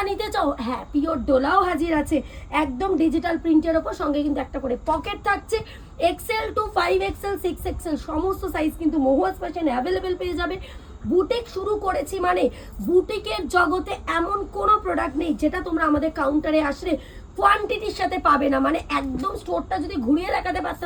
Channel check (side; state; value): both; identical; correlation 1.00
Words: নিতে চাও, হ্যাঁ পিওর ডোলাও হাজির আছে, একদম ডিজিটাল প্রিন্টের ওপর, সঙ্গে কিন্তু একটা করে পকেট থাকছে। এক্সেল টু 5XL 6XL সমস্ত সাইজ কিন্তু মহুয়াস ফ্যাশন অ্যাভেলেবেল পেয়ে যাবে। বুটিক শুরু করেছি মানে বুটিকের জগতে এমন কোনো প্রোডাক্ট নেই যেটা তোমরা আমাদের কাউন্টারে আসলে কোয়ান্টিটির সাথে পাবে না। মানে একদম স্টোরটা যদি ঘুরিয়ে দেখাতে